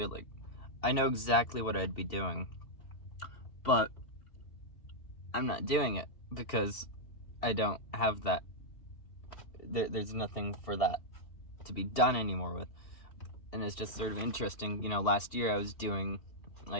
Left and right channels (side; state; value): right; late; 2.6 ms